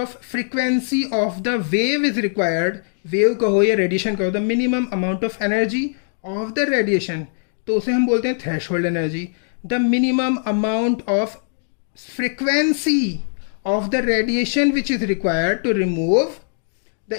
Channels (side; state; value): right; silent; digital silence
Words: frequency of the wave is required. Wave कहो या radiation कहो, the minimum amount of energy of the radiation, तो उसे हम बोलते हैं threshold energy. The minimum amount of frequency of the radiation which is required to remove the